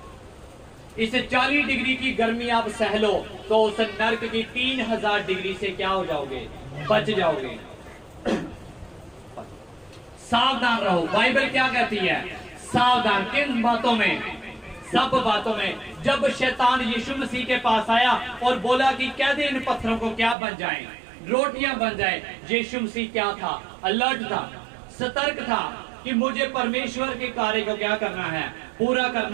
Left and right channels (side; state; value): left; drops out; at 20.4 s